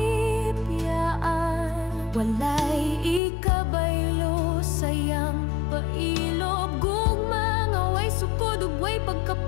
Walay ikabaylo sayang pailob, gugma nga way sukod ug way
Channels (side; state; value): right; drops out; at 3.2 s